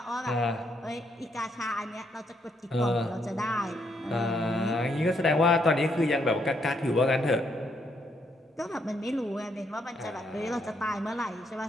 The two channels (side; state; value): both; normal; correlation 0.75